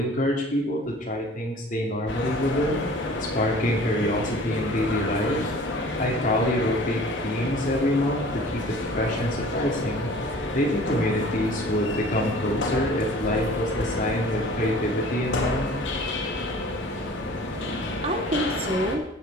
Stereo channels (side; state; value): both; normal; correlation 0.46